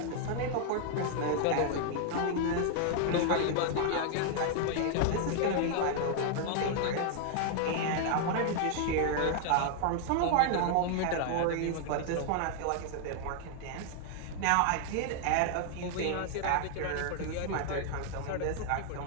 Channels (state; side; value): different; both; correlation 0.00